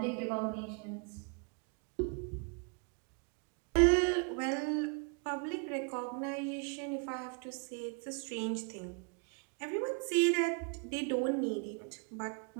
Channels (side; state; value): left; quieter; 37.7 dB